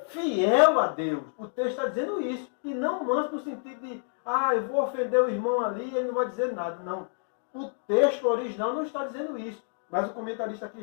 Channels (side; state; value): right; silent; 59 dB below the other